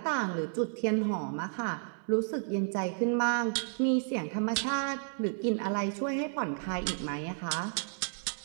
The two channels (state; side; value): silent; left; 56 dB below the other